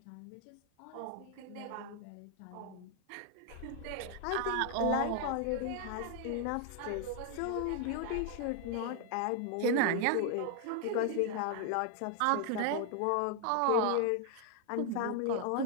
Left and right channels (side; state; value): both; different; correlation 0.00